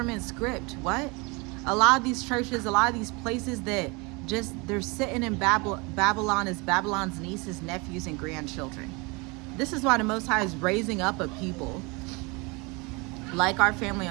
script. What? A lot of these churches, a lot of these places that they're sitting in Babylon as Babylon's nieces, nephews, and grandchildren. This is why the Most High is raising up a people like our family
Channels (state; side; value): quieter; left; 27.8 dB